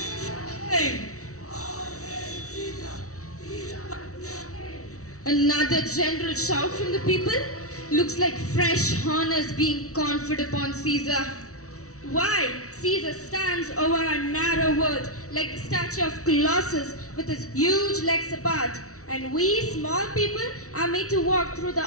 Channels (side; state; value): right; late; 0.64 ms